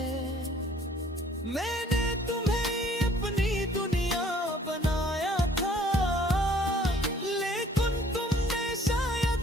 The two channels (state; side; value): normal; both; correlation 0.57